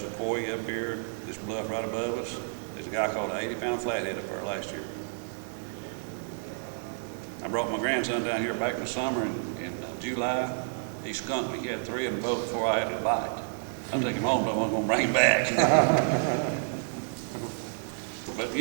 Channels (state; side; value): silent; left; digital silence